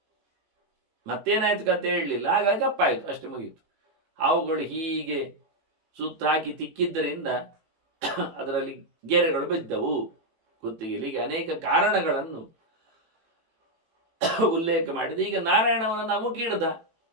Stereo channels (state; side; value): late; left; 18 ms